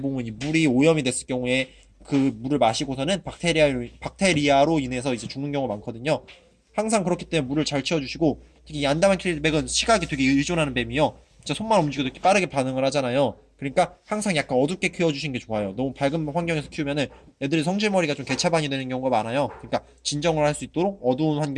이 물이 오염이 됐을 경우에 그 물을 마시고서는 박테리아로 인해서 이제 죽는 경우가 많거든요. 항상 그렇기 때문에 물을 잘 채워주시고, 특히 이 안다만 킬백은 시각이 되게 의존하는 뱀이요. 진짜 손만 움직여도 이렇게 빠르게 반응을 하잖아요. 그러니까 항상 약간 어둡게 키워주시는 게 좋아요. 너무 밝은 환경에서 키우면은 애들이 성질머리가 좀 개차반이 되는 경우가 많아요. 그러니까 진정을 할 수 있도록 어두운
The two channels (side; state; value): both; identical; correlation 1.00